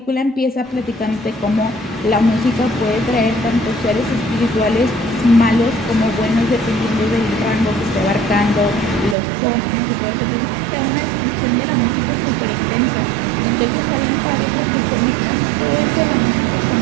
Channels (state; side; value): drops out; left; at 9.2 s